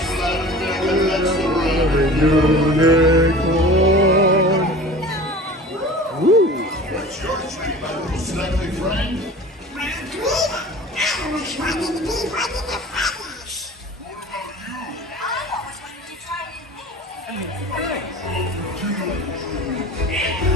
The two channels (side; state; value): both; normal; correlation 0.40